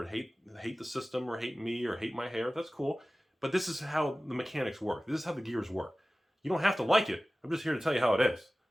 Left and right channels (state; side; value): normal; both; correlation 0.97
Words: hate the system, or hate me, or hate my hair. That's cool. But this is how the mechanics work. This is how the gears work. You don't have to like it. I'm just here to tell you how it is.